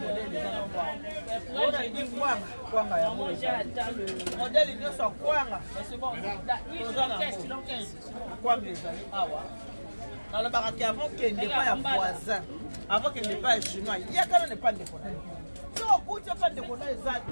eza nongoaonani kwanga ya modele nyonso ya kwanga toza na kwanga ezali awa nalobaka ke avant kende pa ya voisin avant kende pa ya chinois yakana ne pa ndeko na so okuti pa ndeko na eza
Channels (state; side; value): inverted; both; correlation -1.00